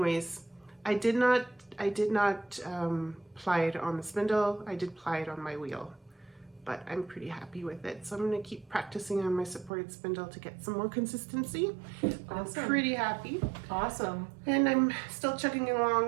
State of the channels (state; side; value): drops out; left; at 9.7 s